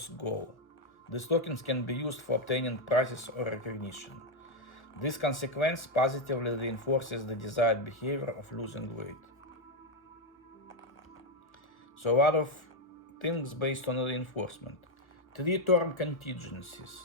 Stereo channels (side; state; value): right; late; 1.1 ms